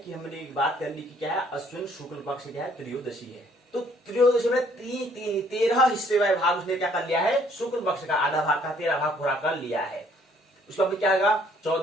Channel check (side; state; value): both; normal; correlation 0.63